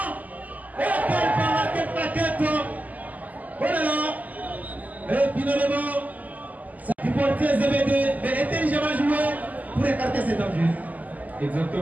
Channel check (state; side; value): late; left; 0.078 ms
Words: Et quelle plaquette! Oh là là! Et finalement, ça du portier ZBD, mais intelligemment joué pour écarter cet danger.